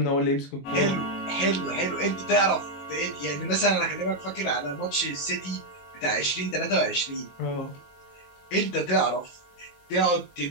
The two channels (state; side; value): late; right; 21 ms